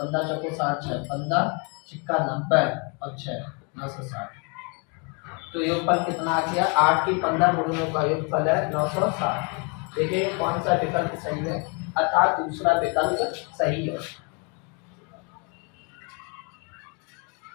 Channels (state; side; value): quieter; right; 34.3 dB